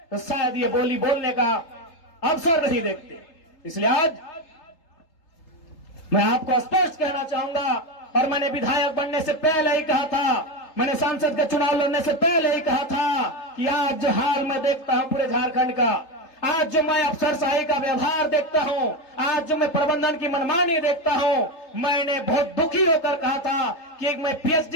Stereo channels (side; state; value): right; late; 3.8 ms